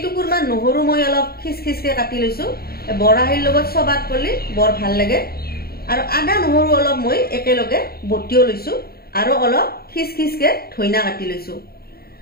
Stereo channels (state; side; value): late; right; 0.45 ms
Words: নহৰু মই অলপ খিচখিচকে কাটি লৈছো বৰাহিৰ লগত সবাত কৰিলে বৰ ভাল লাগে আৰু আদা নহৰু অলপ মই একেলগে বটিও লৈছো আৰু অলপ খিচখিচকে ধইনা কাটি লৈছো